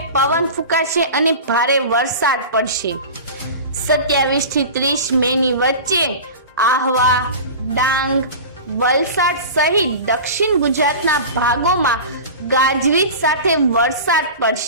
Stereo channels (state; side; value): inverted; both; correlation -0.33